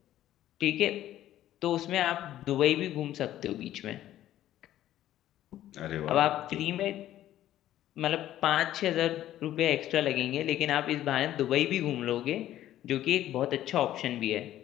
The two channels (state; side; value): quieter; right; 13.0 dB